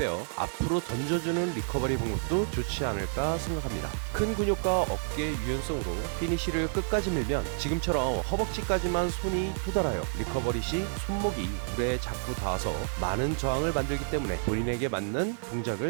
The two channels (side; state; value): left; silent; 58 dB below the other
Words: 앞으로 던져주는 리커버리 방법도 좋지 않을까 생각합니다. 큰 근육과 어깨 유연성으로 피니시를 끝까지 밀면 지금처럼 허벅지까지만 손이 도달하여 리커버리 시 손목이 물에 자꾸 닿아서 많은 저항을 만들기 때문에 본인에게 맞는